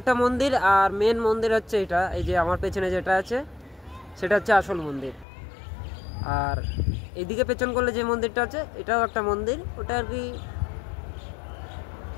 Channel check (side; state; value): right; drops out; at 5.2 s